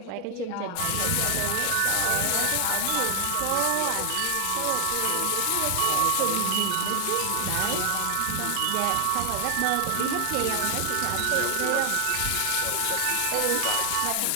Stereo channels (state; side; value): different; both; correlation 0.00